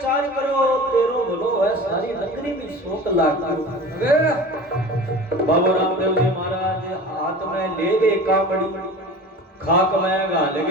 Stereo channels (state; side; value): normal; both; correlation 0.37